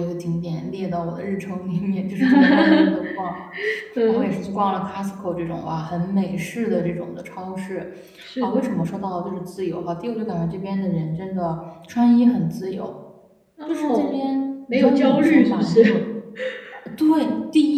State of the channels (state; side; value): identical; both; correlation 1.00